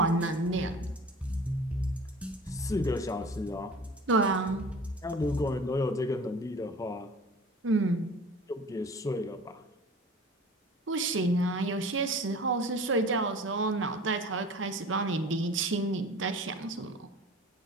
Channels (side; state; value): both; normal; correlation 0.42